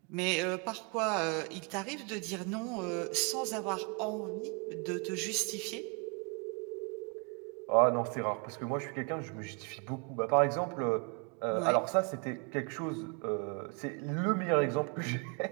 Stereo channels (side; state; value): left; quieter; 35.4 dB